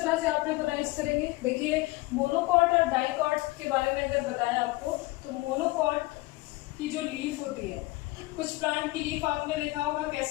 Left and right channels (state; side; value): quieter; right; 21.0 dB